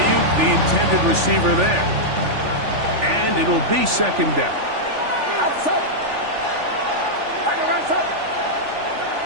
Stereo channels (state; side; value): late; left; 3.4 ms